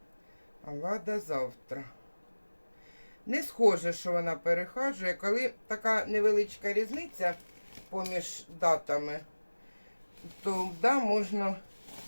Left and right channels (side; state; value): both; inverted; correlation -1.00